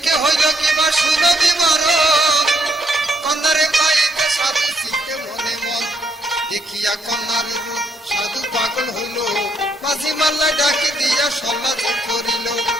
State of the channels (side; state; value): both; normal; correlation 0.72